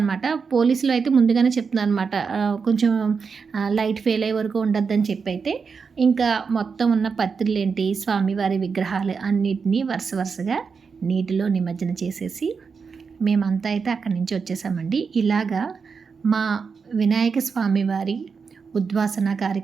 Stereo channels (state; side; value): quieter; left; 5.5 dB